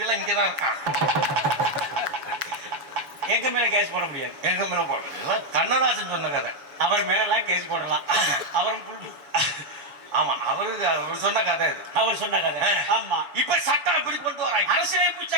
எல்லாம் இங்கதான் இருக்காங்க. எங்க மேல கேஸ் போட முடியாது. எங்க மேல போட கண்ணதாசன் சொன்ன கதை. அவர் மேல எல்லாம் கேஸ் போடலாம். அவரும் ஆமா அவர் சொன்ன கதை. அவர் சொன்ன கதை. ஆமா இப்ப சட்டம் எப்படி கொண்டு வராங்க? அரசியலமைப்பு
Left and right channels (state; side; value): late; left; 7.1 ms